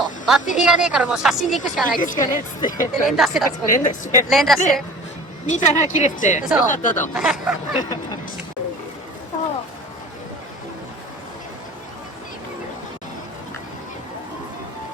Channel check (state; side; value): normal; both; correlation 0.42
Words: バッテリーがねえからもう写真で行くしかないっつって行くしかねえっつって。で連打してた。連打して。連打してで、見たら切れてて、よそうかったと。